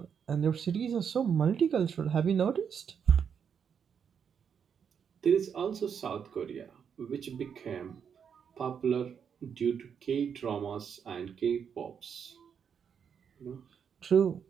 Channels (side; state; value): left; quieter; 7.3 dB